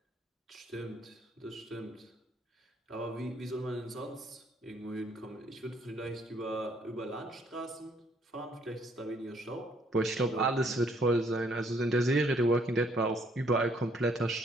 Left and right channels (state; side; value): normal; both; correlation 0.66